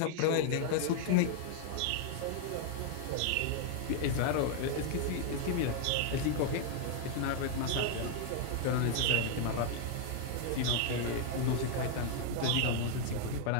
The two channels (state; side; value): different; both; correlation 0.00